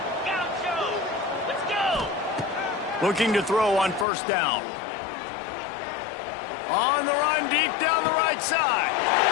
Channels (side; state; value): right; drops out; at 4.0 s